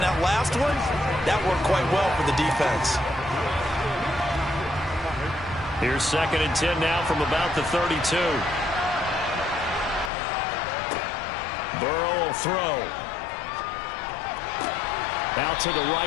that last one, that worked quite well for the defense. Here's 2nd and 10 now from about the 32. Burrow will throw. Out to the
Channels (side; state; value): right; drops out; at 10.1 s